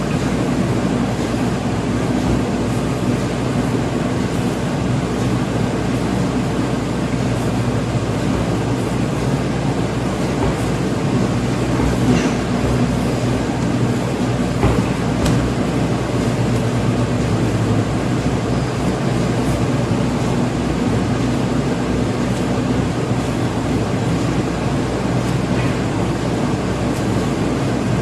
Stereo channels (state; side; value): identical; both; correlation 1.00